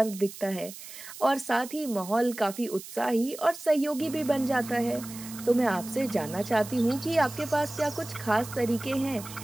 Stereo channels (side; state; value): right; noise; hiss, 14 dB below the sound